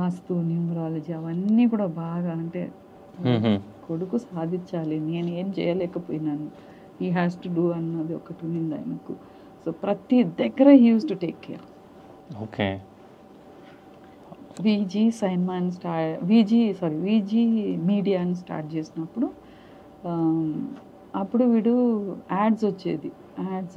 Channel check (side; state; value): both; identical; correlation 1.00